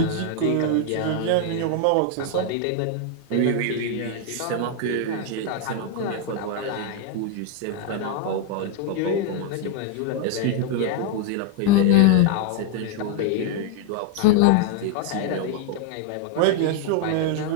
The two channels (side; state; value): both; different; correlation 0.00